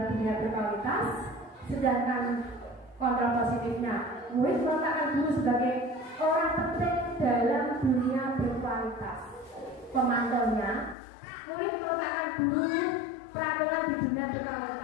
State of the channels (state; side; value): drops out; right; at 11.0 s